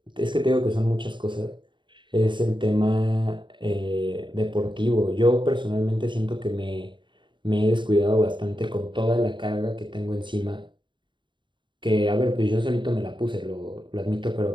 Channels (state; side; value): late; left; 0.23 ms